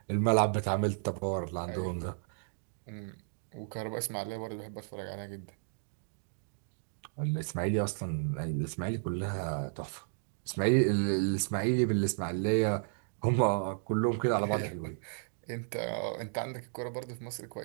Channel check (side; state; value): left; silent; digital silence